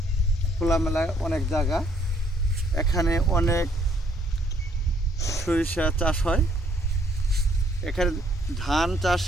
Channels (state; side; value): normal; both; correlation 0.66